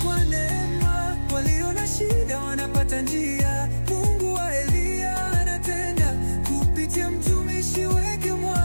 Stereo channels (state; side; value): inverted; both; correlation -1.00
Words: kwa neema, walio na shida wanapata njia. Mungu wa Eliya anatenda kupitia mtumishi wake